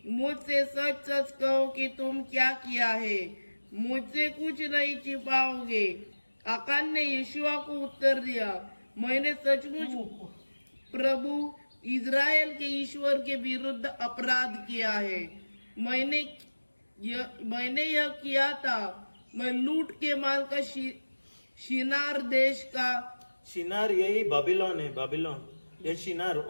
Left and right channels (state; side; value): inverted; both; correlation -1.00